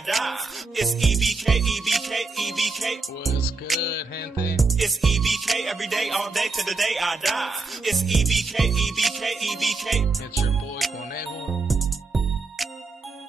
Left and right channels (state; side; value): quieter; left; 3.9 dB